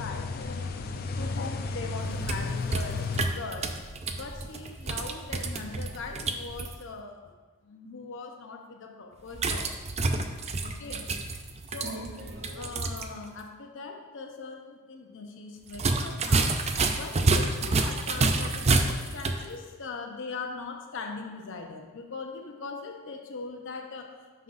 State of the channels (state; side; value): normal; both; correlation 0.51